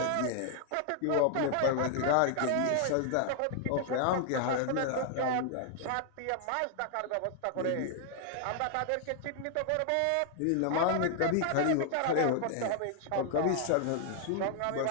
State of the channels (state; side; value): different; both; correlation 0.00